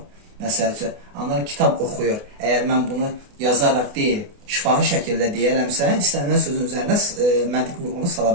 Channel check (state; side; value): late; left; 28 ms